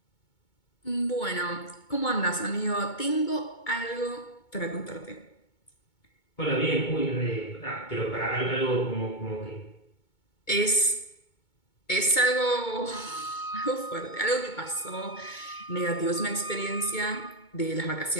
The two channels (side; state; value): right; late; 2.2 ms